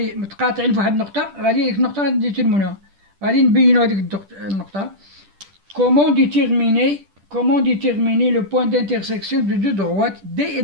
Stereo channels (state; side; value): late; left; 10 ms